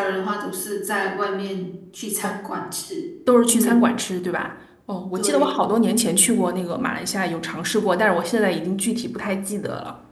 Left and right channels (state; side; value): identical; both; correlation 1.00